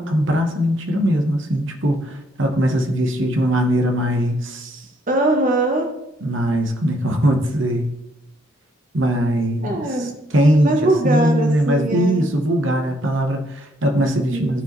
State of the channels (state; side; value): normal; both; correlation 0.70